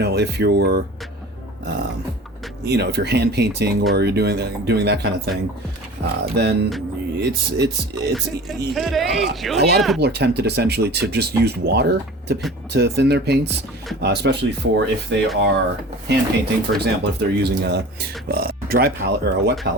you're if you're hand painting or you're doing that kind of thing, then it's a lot of people are tempted essentially to just use water to thin their paints, especially for if they are hand painting, for example, if they're using a dry palette or a wet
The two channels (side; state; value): both; normal; correlation 0.40